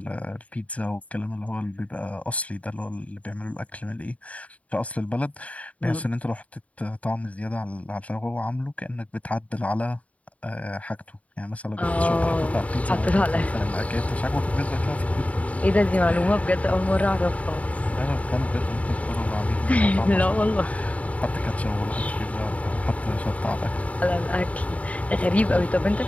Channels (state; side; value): late; right; 0.068 ms